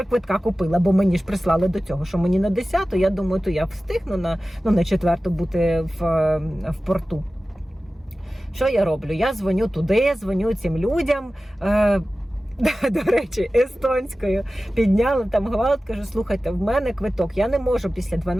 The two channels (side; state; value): both; normal; correlation 0.96